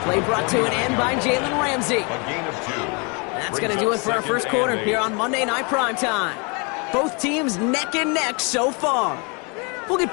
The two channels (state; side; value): quieter; right; 32.4 dB